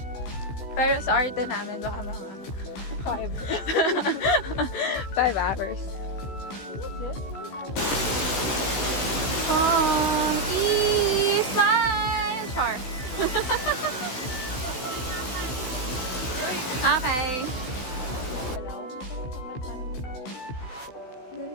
Pero sa arte namin, baka mga 5 hours. Smile! Char. Okay.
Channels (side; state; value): right; late; 16 ms